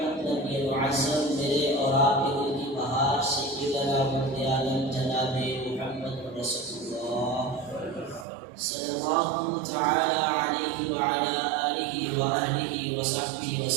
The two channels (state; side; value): drops out; left; at 8.2 s